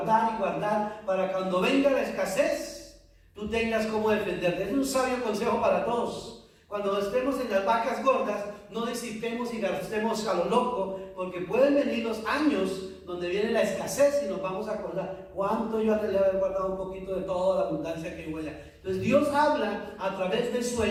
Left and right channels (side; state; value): both; identical; correlation 1.00